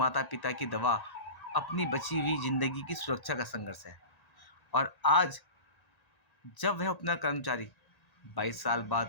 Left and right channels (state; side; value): late; right; 1.9 ms